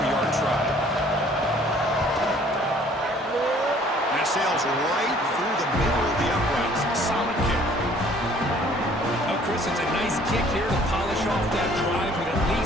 try. And it sails right through the middle of the uprights. Solid kick. Oh, Chris, it's a nice kick here to polish off that drive with at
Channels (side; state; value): both; normal; correlation 0.56